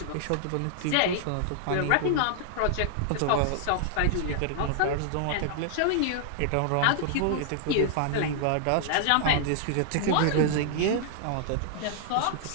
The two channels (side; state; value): both; different; correlation -0.01